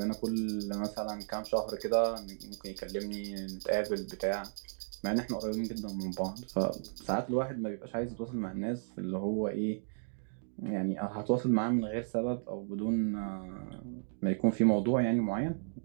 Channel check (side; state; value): left; silent; digital silence